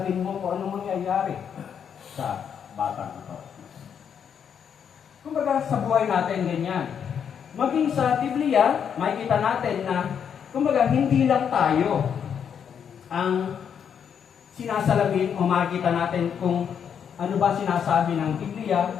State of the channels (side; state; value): right; quieter; 7.8 dB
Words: mo kung anong mangyayari sa batang ito. Kumbaga sa buhay natin ganyan. Maging sa Biblia, makikita natin na kumbaga hindi lang tayo ang sinasalamin o makikita natin kung ano ba sinasabi ng Biblia